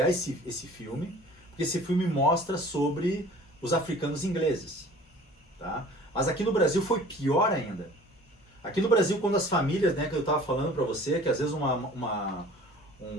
esse filme, porque esse filme mostra sobre os africanos ingleses, tá? Mas aqui no Brasil foi pior ainda. Aqui no Brasil, quando as famílias, né, que eu estava falando para você, que às vezes um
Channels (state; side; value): normal; both; correlation 0.47